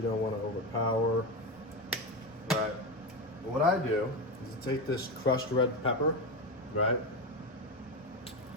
don't want to overpower. Right. What I do is I take this crushed red pepper, right?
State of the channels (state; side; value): normal; both; correlation 0.16